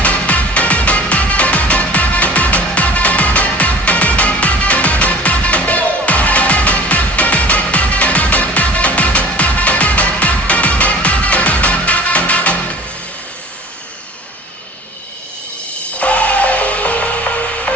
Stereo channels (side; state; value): both; normal; correlation 0.44